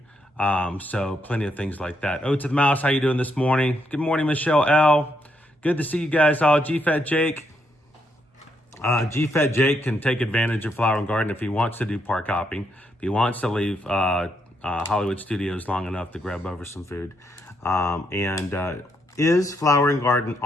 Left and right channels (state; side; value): normal; both; correlation 0.77